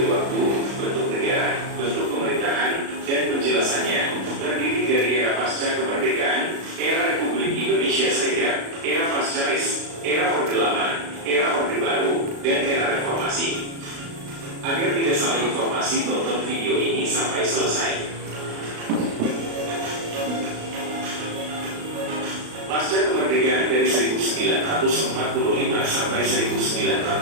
waktu, bentuk negara, bentuk pemerintahan, dan penjelasannya. Terdiri dari era pasca kemerdekaan, era Republik Indonesia Serikat, era pascaris, era Orde Lama, era Orde Baru, dan era Reformasi. Agar tidak salah informasi, tonton video ini sampai selesai. Pasca kemerdekaan dari 1945 sampai 1949.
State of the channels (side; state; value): left; late; 36 ms